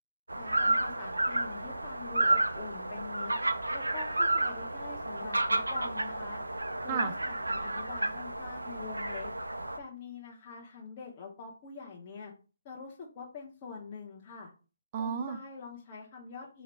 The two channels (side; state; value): both; inverted; correlation -0.91